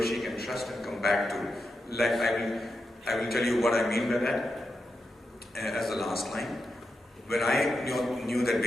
she can trust and come back to, like I will tell you what I mean by that as the last line. When I knew that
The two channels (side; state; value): both; normal; correlation 0.87